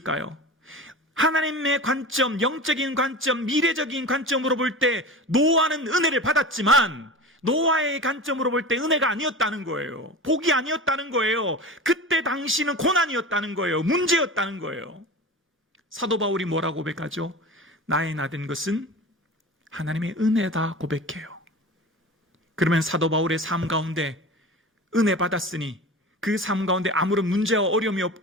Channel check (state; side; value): normal; both; correlation 0.32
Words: 하나님의 관점, 영적인 관점, 미래적인 관점으로 볼 때 노아는 은혜를 받았지만 노아의 관점으로 볼 때 은혜가 아니었다는 거예요. 복이 아니었다는 거예요. 그때 당시는 고난이었다는 거예요. 문제였다는 거예요. 사도 바울이 뭐라고 고백하죠? 나의 나된 것은 하나님의 은혜다 고백해요. 그러면 사도 바울의 삶 가운데 은혜 받았으니 그 삶 가운데 아무런 문제와 어려움이